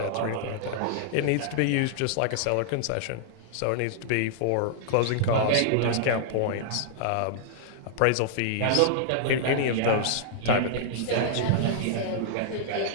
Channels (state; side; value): different; both; correlation -0.01